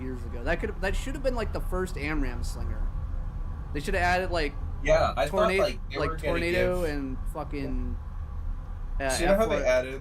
ago. That should have been like the first AMRAAM slinger. They should have added like I tornado, thought like tornado and fucking. So you know how they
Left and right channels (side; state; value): both; identical; correlation 1.00